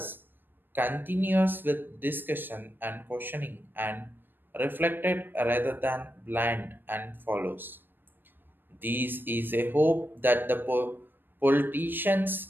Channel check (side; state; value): left; late; 0.095 ms